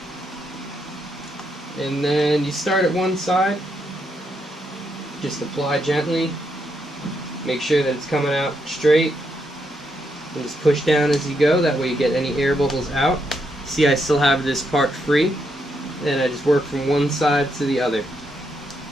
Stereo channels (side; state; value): both; normal; correlation 0.79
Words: And then you start at one side, just apply gently, make sure that it's coming out straight, and just push down as you go. That way you get any air bubbles out. See, I still have this part free, and I just work from one side to the other